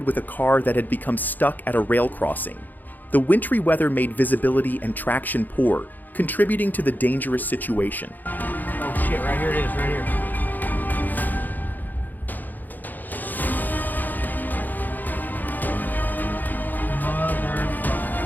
with a car that had become stuck at a rail crossing. The wintry weather made visibility and traction poor, contributing to the dangerous situation. Oh shit, right here it is, right here.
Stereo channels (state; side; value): late; right; 0.085 ms